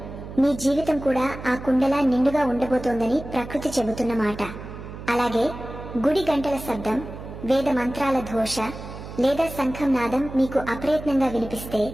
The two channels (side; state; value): right; noise; hum, 12 dB below the sound